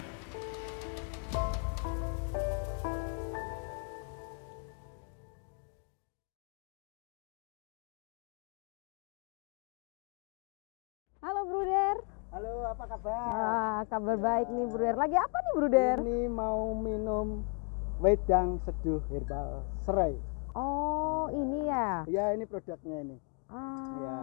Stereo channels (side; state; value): right; quieter; 39.4 dB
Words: Halo Bruder. Halo, apa kabar? Kabar baik nih Bruder. Lagi apa nih Bruder? Ini mau minum wedang seduh herbal serai. Oh, ini ya? Ya, ini produknya ini. Ya.